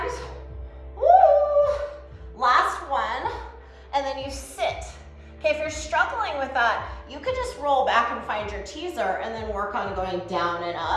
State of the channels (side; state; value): both; identical; correlation 1.00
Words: Woo! Last one, and then you sit. Okay, if you're struggling with that, you could just roll back and find your teaser and then work on going down and